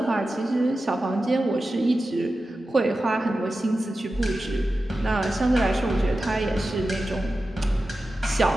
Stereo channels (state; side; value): normal; both; correlation 0.93